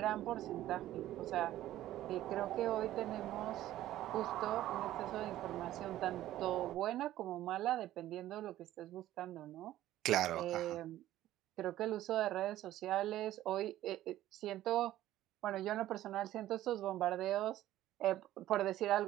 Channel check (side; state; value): left; quieter; 13.9 dB